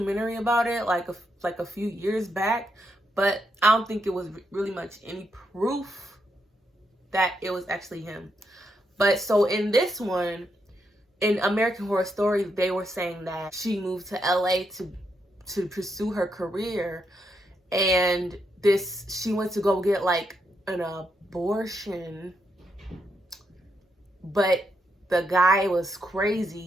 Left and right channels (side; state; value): both; normal; correlation 0.80